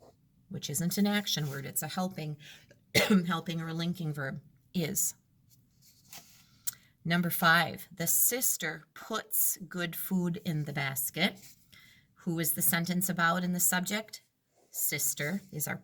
which isn't an action word, it's a helping or linking verb, is. Number 5, the sister puts good food in the basket. Who is the sentence about in the subject? Sister is our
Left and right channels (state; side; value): identical; both; correlation 1.00